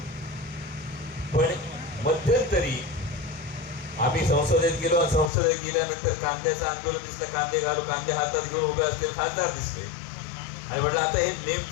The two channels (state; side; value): drops out; right; at 5.3 s